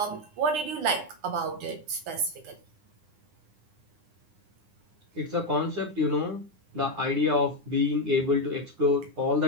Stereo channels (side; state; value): left; late; 9.8 ms